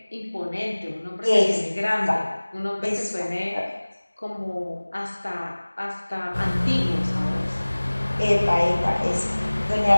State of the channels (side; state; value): both; inverted; correlation -1.00